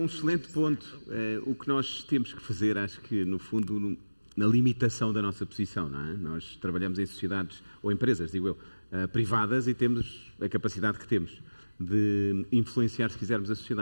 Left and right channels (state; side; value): inverted; both; correlation -1.00